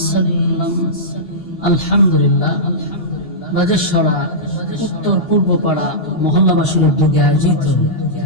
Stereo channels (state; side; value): late; right; 2.8 ms